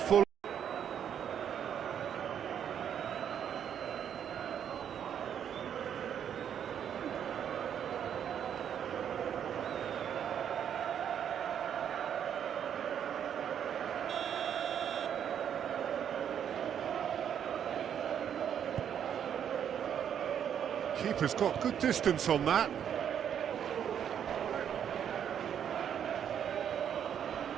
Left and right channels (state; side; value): quieter; left; 8.9 dB